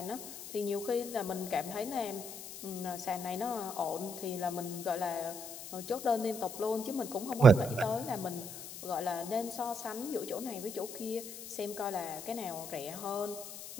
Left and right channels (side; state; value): left; noise; hiss, 10 dB below the sound